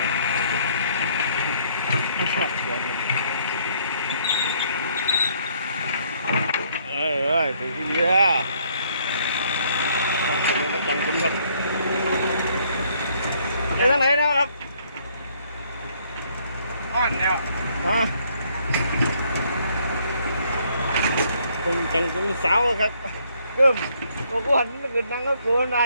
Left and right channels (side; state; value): both; inverted; correlation -0.66